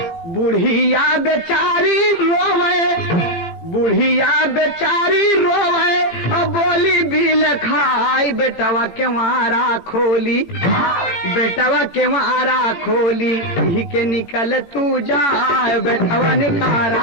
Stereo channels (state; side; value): late; right; 17 ms